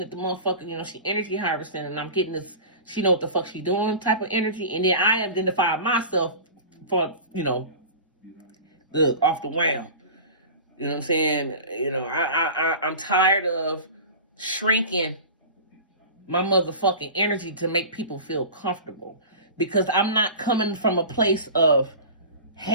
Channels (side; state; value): both; inverted; correlation -0.34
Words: the motherfucker, she energy harvesting and I'm getting this, she know what the fuck she doing type of energy. And then I identified myself for, off the wham. You know what I'm saying? I'm tired of shrinking my motherfucking energy to make people feel comfortable. Because I'm not coming from a place of